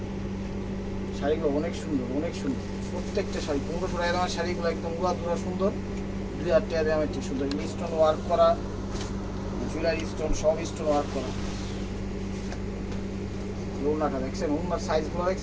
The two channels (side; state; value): both; identical; correlation 1.00